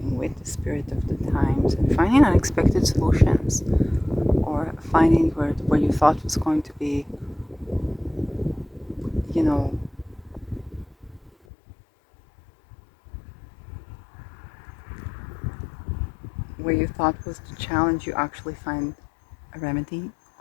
With the spirit of the times and finding unexpected solutions, or finding where you thought was going to be, you know, where you thought was the challenge, you actually find a remedy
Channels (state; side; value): drops out; right; at 11.3 s